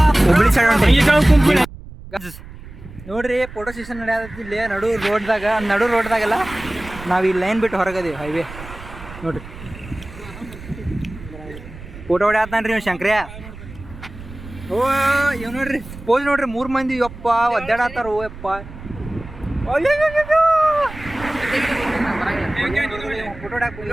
ಹುಬ್ಳಿ ಸೈಡ್ ಹೊಂಟೇವಿ ನೋಡ್ರಿ. ಫೋಟೋ ಸೆಷನ್ ನಡೆಯತ್ತಿ ಇಲ್ಲಿ ನಡು ರೋಡ್ದಾಗೆಲ್ಲ. ನಾವು ಈ ಲೈನ್ ಬಿಟ್ಟು ಹೊರಗದೀವಿ, ಹೈವೇ ನೋಡ್ರಿ. ಫೋಟೋ ಹೊಡ್ಯಾತಾನ್ರಿ ನೀವು ಶಂಕ್ರ್ಯ. ಓ ಇವ್ ನೋಡ್ರಿ ಪೋಸ್ ನೋಡ್ರಿ, 3 ಮಂದಿ ಯಪ್ಪ ಒದ್ದಾಡತ್ತಾರ. ಓ ಯಪ್ಪ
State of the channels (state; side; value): noise; right; rumble, 15 dB below the sound